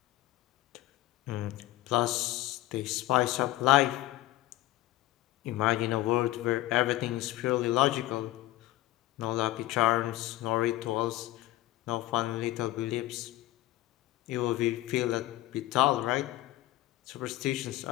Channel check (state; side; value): quieter; right; 16.6 dB